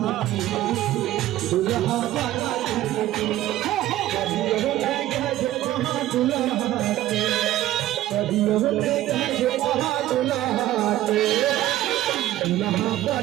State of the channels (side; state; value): left; quieter; 14.5 dB